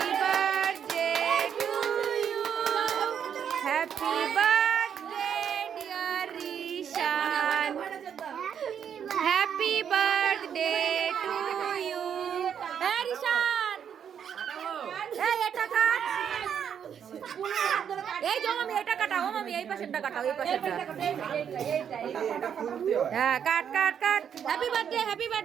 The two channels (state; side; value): quieter; left; 8.2 dB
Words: birthday to you, happy birthday dear Rishan, happy birthday to you. হ্যাঁ রিশান এই এটা কাট, এই যে মামি এটা কাটাও, মামি এই পাশেরটা কাটাও, এই পাশেরটা। হ্যাঁ cut cut cut. Happy birthday happy